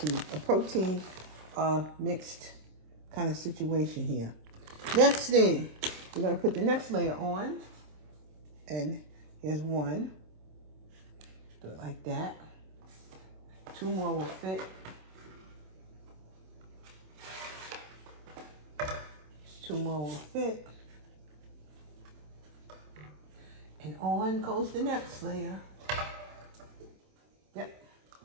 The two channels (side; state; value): left; late; 27 ms